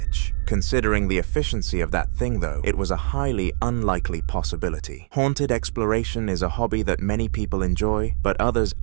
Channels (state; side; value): silent; left; digital silence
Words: Considering the efficiency of that thing though, it was a highly unlikely possibility. Haunted exploration is a hobby that many people enjoy, but others